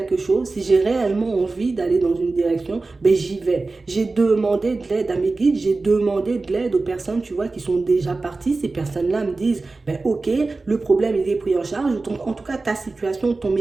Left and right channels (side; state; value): left; quieter; 3.6 dB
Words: chose, si j'ai réellement envie d'aller dans une direction, ben j'y vais. J'ai demandé de l'aide à mes guides, j'ai demandé de l'aide aux personnes, tu vois, qui sont déjà parties. Ces personnes-là me disent, ben ok, le problème il est pris en charge. En tout cas, ta situation, ton